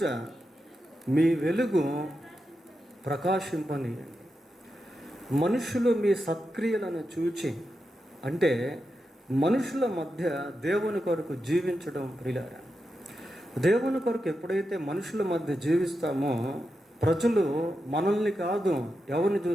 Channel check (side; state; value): both; normal; correlation 0.88